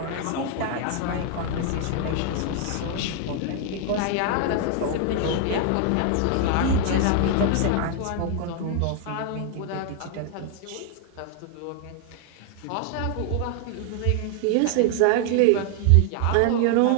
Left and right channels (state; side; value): different; both; correlation 0.00